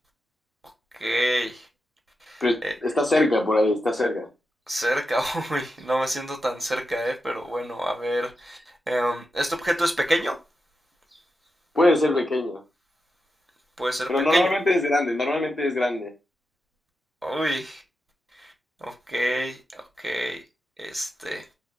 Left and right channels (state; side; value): normal; both; correlation 0.89